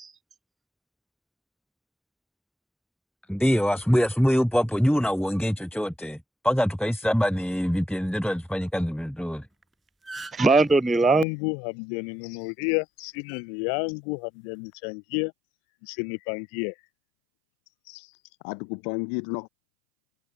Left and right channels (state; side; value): drops out; right; at 11.2 s